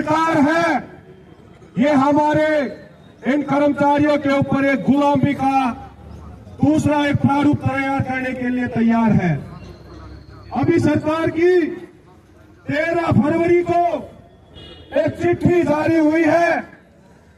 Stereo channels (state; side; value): identical; both; correlation 1.00